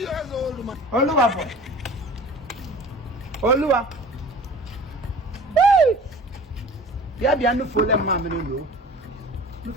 Oluwa boy. Oluwa. Bia no fole ma me no. No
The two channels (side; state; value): both; normal; correlation 0.42